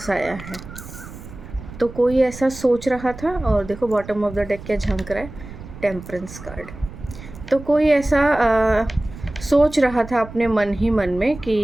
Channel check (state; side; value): noise; right; rumble, 14 dB below the sound